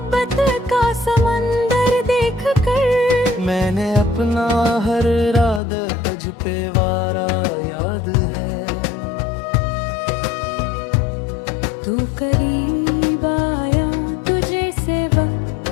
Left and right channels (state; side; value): drops out; right; at 5.6 s